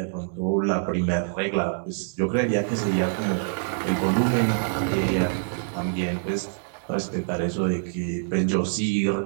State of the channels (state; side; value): silent; left; digital silence